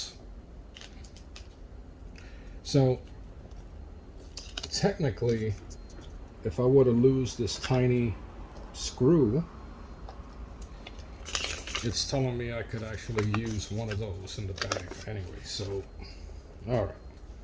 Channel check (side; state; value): both; identical; correlation 1.00